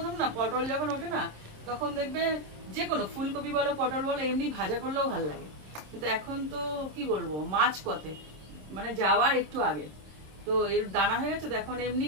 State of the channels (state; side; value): late; left; 26 ms